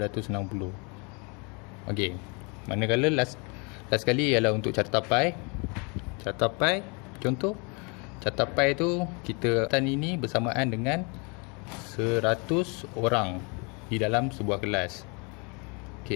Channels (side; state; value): right; quieter; 32.3 dB